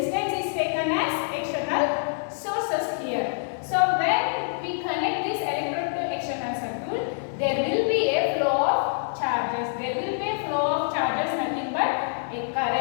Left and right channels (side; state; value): right; silent; 61 dB below the other